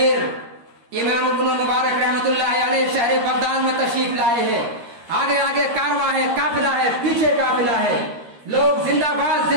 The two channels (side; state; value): left; late; 13 ms